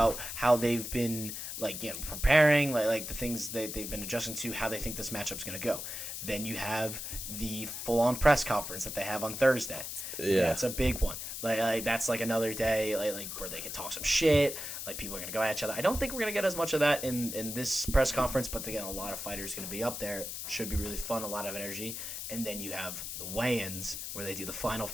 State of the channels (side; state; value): left; noise; hiss, 6 dB below the sound